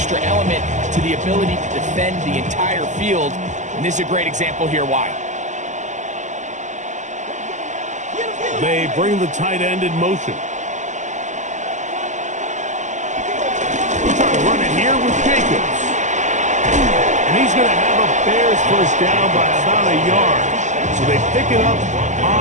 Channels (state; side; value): late; left; 0.34 ms